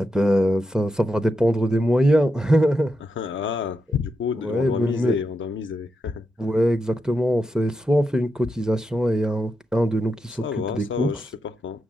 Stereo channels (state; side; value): normal; both; correlation 0.85